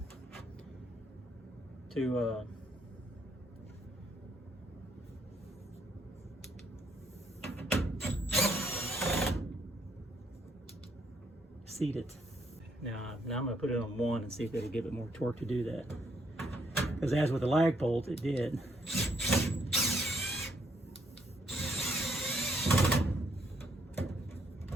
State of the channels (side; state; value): both; normal; correlation 0.71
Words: to seat it. Now I'm going to put it on 1 and see if it'll give it more torque to do that. Because as with the lag bolt, it did.